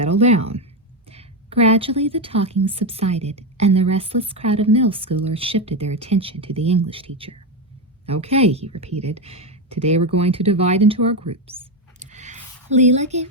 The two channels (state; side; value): normal; both; correlation 0.10